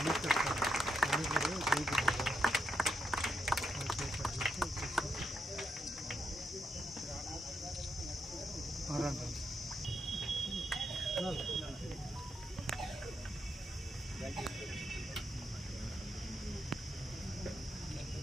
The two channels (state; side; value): normal; both; correlation 0.82